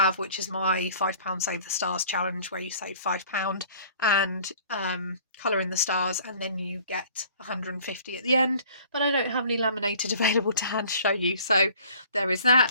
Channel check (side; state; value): both; inverted; correlation -0.52